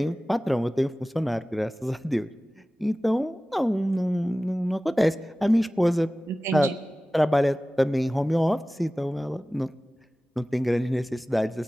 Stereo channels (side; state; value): both; normal; correlation 0.97